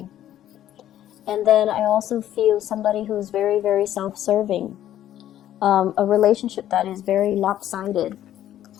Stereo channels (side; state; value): right; quieter; 12.0 dB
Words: And then I also feel somebody who's very, very self-serving. A relationship that is very lopsided.